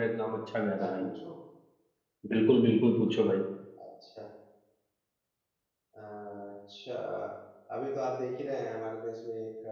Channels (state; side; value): identical; both; correlation 1.00